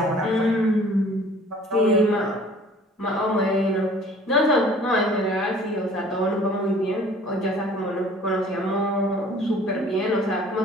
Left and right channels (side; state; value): both; normal; correlation 0.51